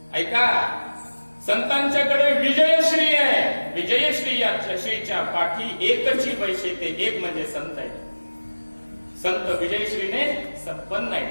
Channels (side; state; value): both; inverted; correlation -1.00